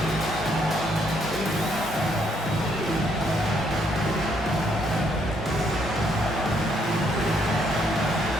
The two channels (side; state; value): both; normal; correlation 0.71